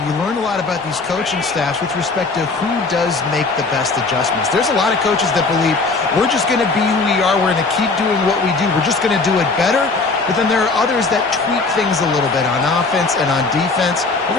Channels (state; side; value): quieter; right; 3.9 dB